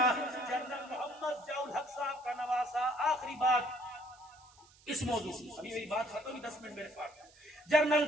جنرل محمد ضیاء الحق صاحب کا نواسا، آخری بات اس موضوع سے، ابھی میری بات ختم ہوئی، 10 منٹ میرے پاس۔ جنرل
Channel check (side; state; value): right; noise; hiss, 27 dB below the sound